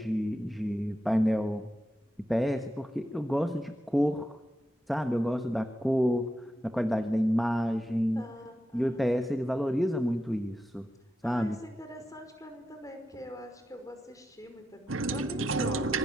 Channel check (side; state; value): both; normal; correlation 0.88